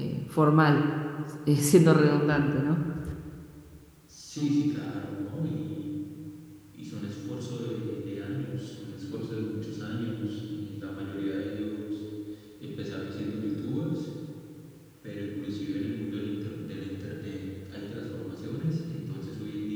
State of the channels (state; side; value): identical; both; correlation 1.00